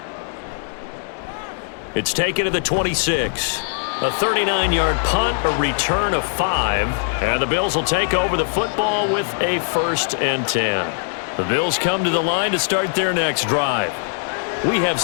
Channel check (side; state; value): right; silent; 64 dB below the other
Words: It's taken to the 26. A 39-yard punt, a return of 5, and the Bills will take over the football with a 1st and 10. The Bills come to the line to start their next drive. We have